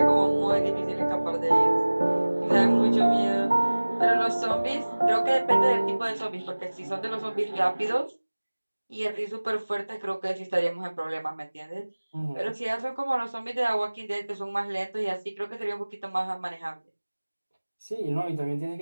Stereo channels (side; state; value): both; inverted; correlation -1.00